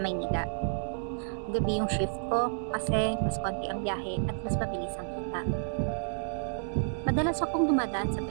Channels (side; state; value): left; silent; digital silence